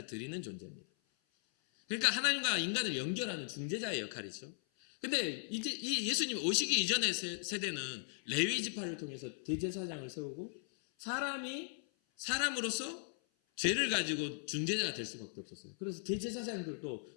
드리는 존재입니다. 그러니까 하나님과 인간을 연결하는 중재자의 역할이죠. 근데 이제 이 예수님 오시기 이전의 세대는 레위 지파를 통해서 대제사장을 세우고 사람으로서 죄를 가지고 중재자가 될 수밖에 없었어요. 그래서 대제사장들도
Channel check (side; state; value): right; silent; 52 dB below the other